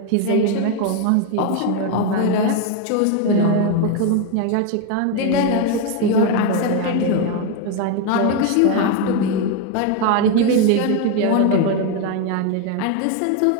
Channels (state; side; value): different; both; correlation 0.02